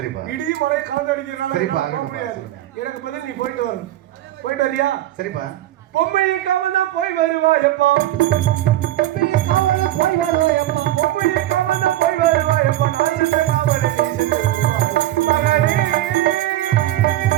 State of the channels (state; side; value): quieter; left; 14.3 dB